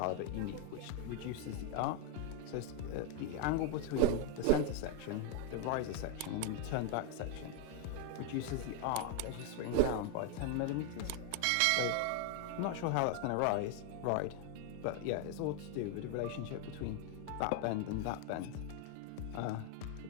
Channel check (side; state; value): both; different; correlation 0.01